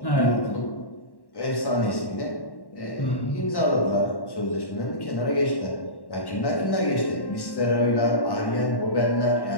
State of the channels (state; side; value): late; right; 1.1 ms